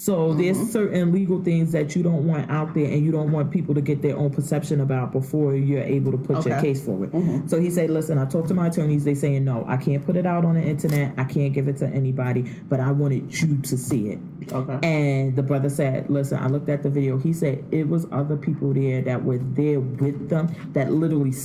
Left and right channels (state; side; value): identical; both; correlation 1.00